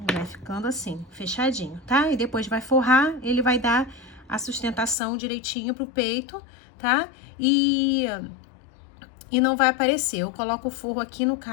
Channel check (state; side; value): drops out; right; at 5.0 s